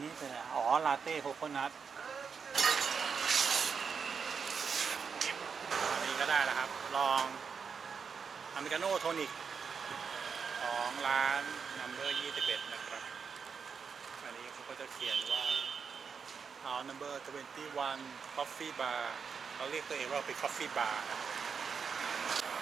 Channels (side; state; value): left; quieter; 6.0 dB